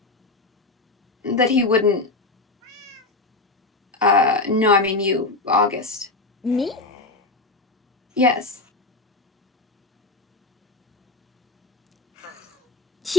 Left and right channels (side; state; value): right; quieter; 3.3 dB